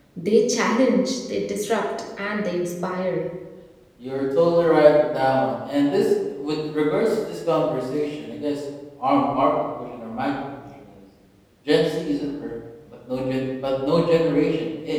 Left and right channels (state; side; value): identical; both; correlation 1.00